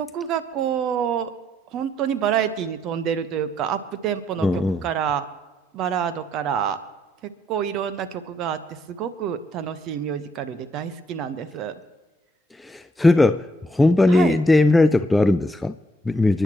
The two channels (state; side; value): normal; both; correlation 0.73